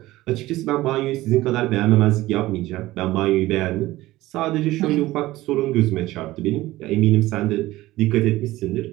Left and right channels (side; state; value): left; quieter; 17.3 dB